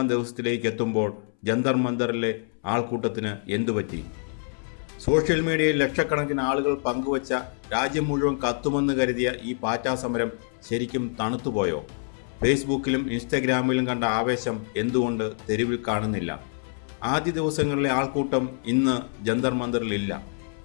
ദിവസത്തിലേക്ക് എത്തുമ്പോൾ ജന്തർ മന്ദറിലെ ആൾക്കൂട്ടത്തിന് എന്തുപറ്റി? സോഷ്യൽ മീഡിയയിൽ ലക്ഷക്കണക്കിന് ആളുകൾ പങ്കുവച്ച രാജ്യം മുഴുവൻ കത്തുമെന്ന് കരുതിയ ഈ പാറ്റാ സമരം ശരിക്കും തണുത്തുപോയോ? ഫേസ്ബുക്കിലും ഇൻസ്റ്റഗ്രാമിലും കണ്ട ആവേശം എന്തുകൊണ്ട് തെരുവിൽ കാണുന്നില്ല? ആദ്യ ദിവസങ്ങളിലെ ആൾക്കൂട്ടം ഇന്ന് ജന്തർ മന്ദറിലില്ല.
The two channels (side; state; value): right; silent; 61 dB below the other